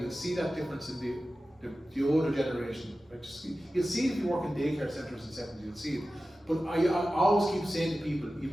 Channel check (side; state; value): both; normal; correlation 0.95